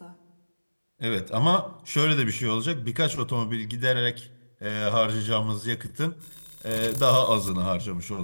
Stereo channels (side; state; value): both; inverted; correlation -1.00